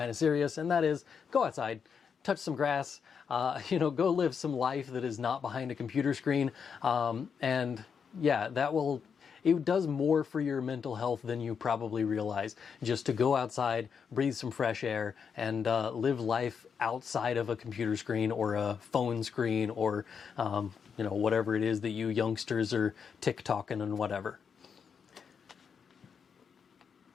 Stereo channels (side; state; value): right; quieter; 6.5 dB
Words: of serious, and that is go outside, touch some grass, go live some life that is not behind a computer screen. And yeah, it does more for your mental health than you probably realize, just to go outside, breathe some fresh air, and live life outside of a computer screen or a phone screen or whatever it is that you youngsters are TikToking and whatever.